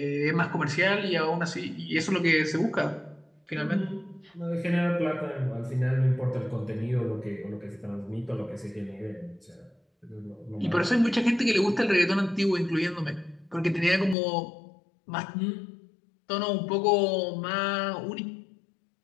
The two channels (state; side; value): drops out; right; at 14.2 s